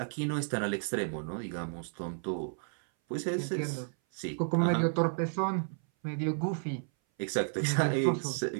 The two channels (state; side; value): silent; left; 56 dB below the other